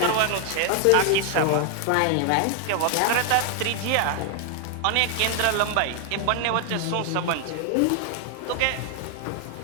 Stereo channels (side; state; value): both; different; correlation 0.00